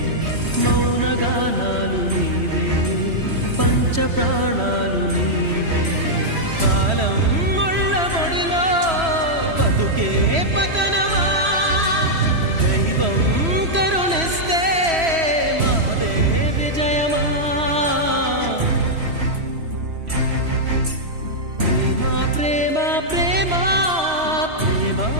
మౌనగానాలు నీవే, పంచ ప్రాణాలు నీవే. కాలం ముళ్ళ ఒడిలో బతుకే పతనమా, దైవం కరుణిస్తే మాదే విజయమా. ప్రేమ ప్రేమ ప్రేమ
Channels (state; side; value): late; left; 3.1 ms